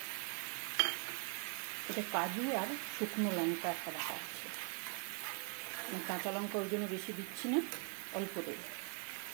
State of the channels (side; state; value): left; quieter; 36.2 dB